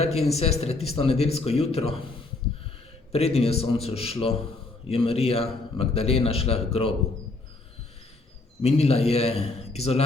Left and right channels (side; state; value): right; quieter; 3.3 dB